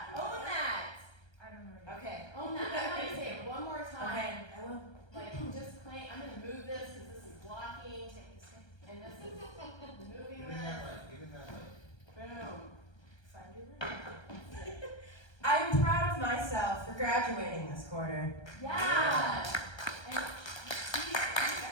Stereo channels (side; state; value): right; late; 1.3 ms